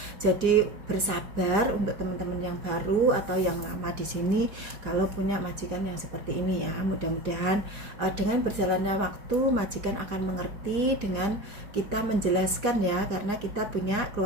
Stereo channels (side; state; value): left; late; 4.9 ms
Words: Jadi bersabar untuk teman-teman yang baru atau yang lama di sini kalau punya majikan yang seperti ini ya. Mudah-mudahan dengan berjalannya waktu majikan akan mengerti dengan kita menjelaskan ya, karena kita punya